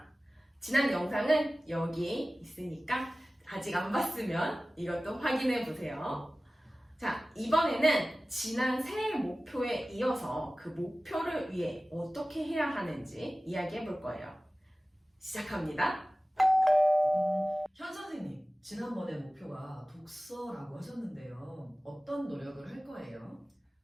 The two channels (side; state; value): both; normal; correlation 0.97